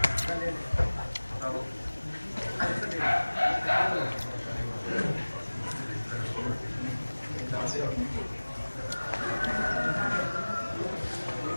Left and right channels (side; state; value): both; inverted; correlation -1.00